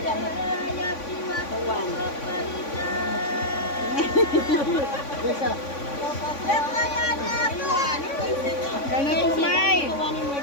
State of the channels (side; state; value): right; late; 3.5 ms